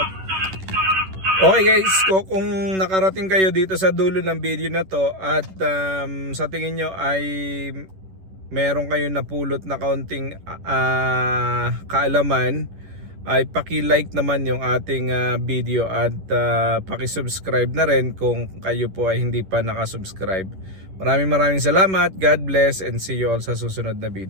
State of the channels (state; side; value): late; left; 11 ms